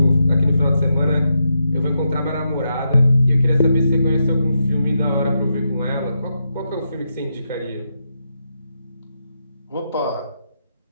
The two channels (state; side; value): inverted; both; correlation -0.83